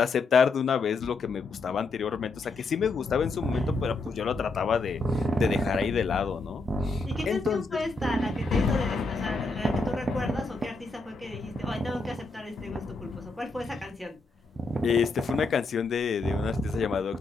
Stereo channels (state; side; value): quieter; right; 3.6 dB